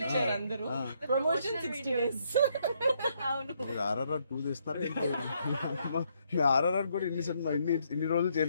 అందరూ, ప్రమోషన్ 60 days. అవును. మీరు RRR 2 చేస్తారా? RRR కూడా ఇన్ని రోజులు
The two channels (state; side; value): inverted; both; correlation -0.73